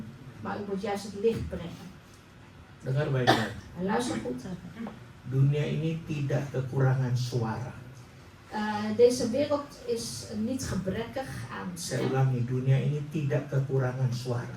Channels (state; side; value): identical; both; correlation 1.00